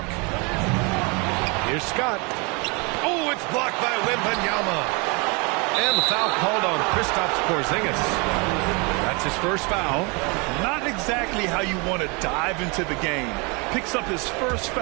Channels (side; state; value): left; quieter; 29.8 dB